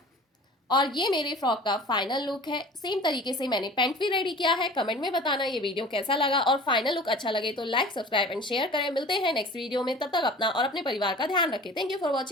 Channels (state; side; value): normal; both; correlation 0.42